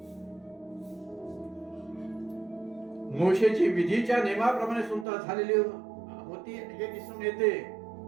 मोशेची विधीच्या नियमाप्रमाणे सुनता झालेली होती हे दिसून येते.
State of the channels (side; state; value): left; drops out; at 5.1 s